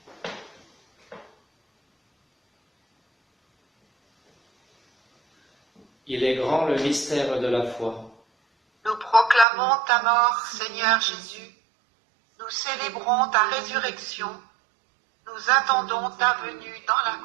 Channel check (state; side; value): drops out; left; at 9.5 s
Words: Il est grand le mystère de la foi. Nous proclamons ta mort, Seigneur Jésus. Nous célébrons ta résurrection. Nous attendons ta venue dans la